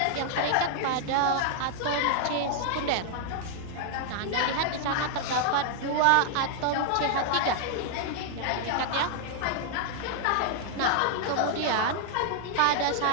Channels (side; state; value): both; different; correlation 0.00